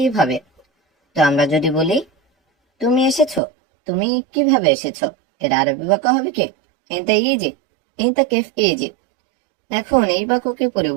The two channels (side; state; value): left; drops out; at 3.4 s